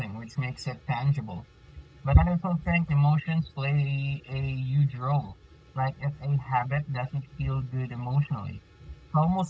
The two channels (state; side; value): identical; both; correlation 1.00